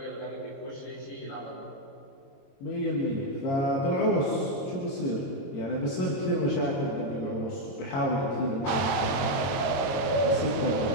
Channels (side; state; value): right; late; 21 ms